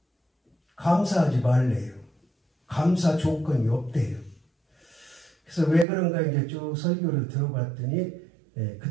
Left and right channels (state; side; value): drops out; left; at 5.9 s